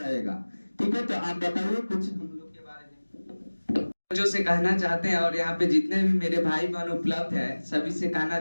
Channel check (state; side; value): inverted; both; correlation -1.00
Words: ठीक है? तो आप बताइए कुछ हम लोग के बारे में जो से कहना चाहते हैं, और यहाँ पे जितने भी मेरे भाई बहन उपलब्ध है सभी से कहना